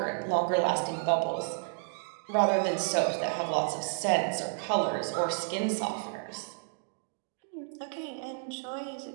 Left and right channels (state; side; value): silent; left; 57 dB below the other